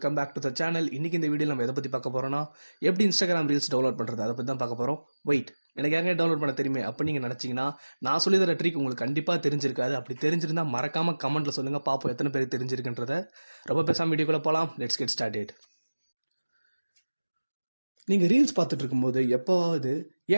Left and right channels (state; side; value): inverted; both; correlation -1.00